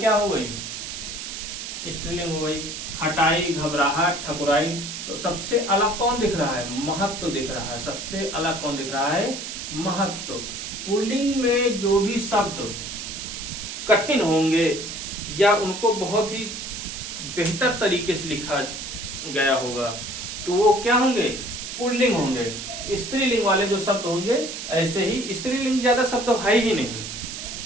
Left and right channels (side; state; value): right; noise; hiss, 7 dB below the sound